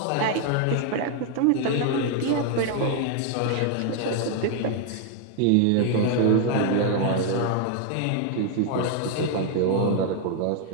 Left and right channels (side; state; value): both; different; correlation 0.00